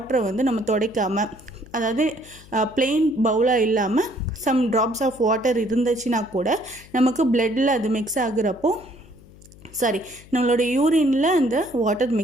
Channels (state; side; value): noise; left; hum, 22 dB below the sound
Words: வந்து நம்ம துடைக்காமல், அதாவது பிளெயின் பவுலாக இல்லாமல் சம் ட்ராப்ஸ் ஆஃப் வாட்டர் இருந்துச்சுன்னா கூட நமக்கு பிளட்டில் அது மிக்ஸ் ஆகுறப்போ நம்மளோட யூரினில் அந்த வாட்டர்